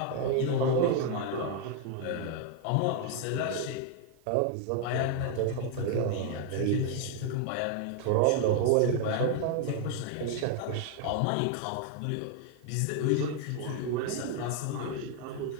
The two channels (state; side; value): different; both; correlation 0.00